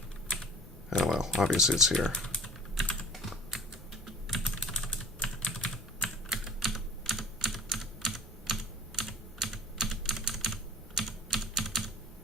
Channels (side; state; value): both; normal; correlation 0.46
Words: Oh well, obviously it's here.